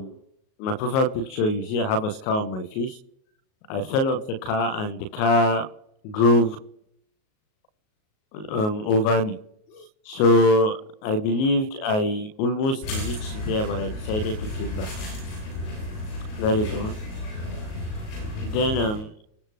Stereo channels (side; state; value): right; late; 38 ms